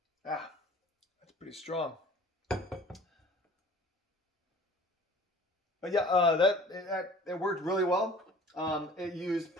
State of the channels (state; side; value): normal; both; correlation 0.47